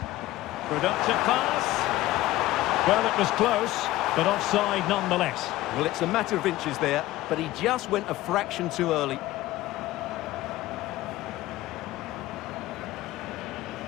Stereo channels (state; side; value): quieter; right; 16.5 dB